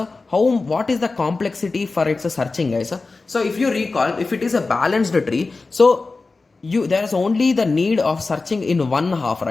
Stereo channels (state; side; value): quieter; right; 3.8 dB